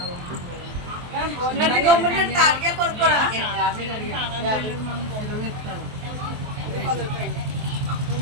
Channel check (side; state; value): left; late; 23 ms